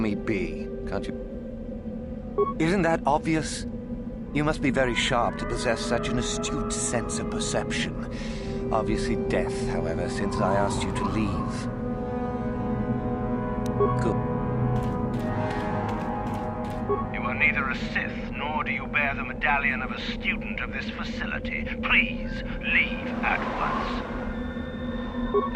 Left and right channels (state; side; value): identical; both; correlation 1.00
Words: be, can't you? Isn't that obvious? You must be very sharp to possess such an astute sense of perception. Obviously death, however, since I asked you to leave. Good. You are neither a Sith, nor do you bear the medallion of a student of this facility. Please, leave at once.